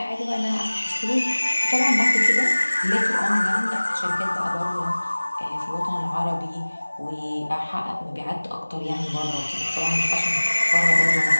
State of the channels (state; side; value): inverted; both; correlation -1.00